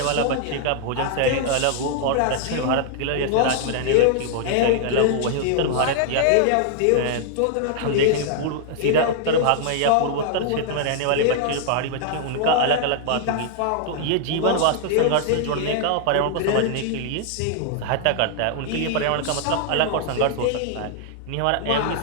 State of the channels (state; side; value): different; both; correlation -0.01